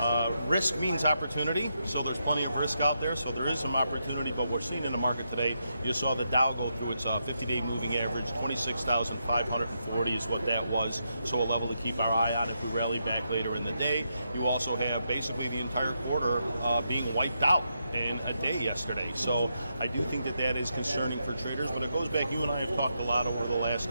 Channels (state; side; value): inverted; both; correlation -0.82